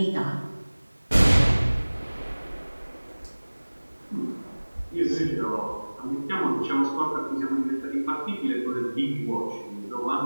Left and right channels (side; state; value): both; inverted; correlation -1.00